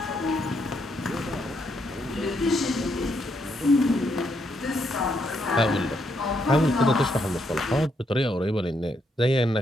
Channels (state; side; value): normal; both; correlation 0.76